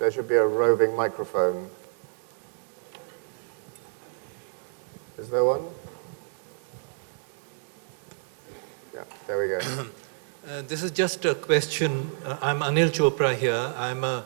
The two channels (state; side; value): silent; left; 59 dB below the other